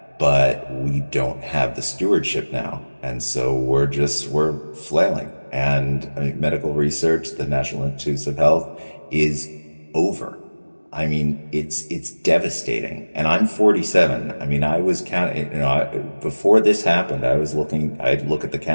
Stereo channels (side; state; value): both; inverted; correlation -1.00